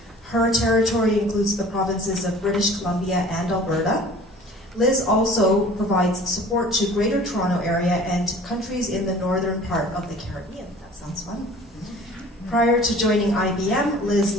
Her territory includes the provinces of British Columbia and Alberta. Liz also provides support to Greater Toronto Area and countries in the northern part of the Caribbean. That sounds fun. Prior to joining IBM, Liz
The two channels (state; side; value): normal; both; correlation 0.47